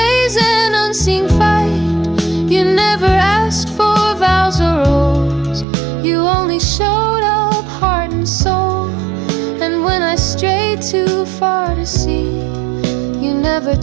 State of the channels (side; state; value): left; drops out; at 5.7 s